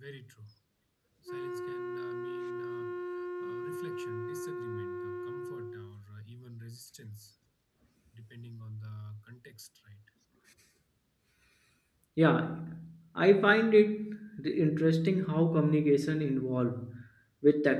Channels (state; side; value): identical; both; correlation 1.00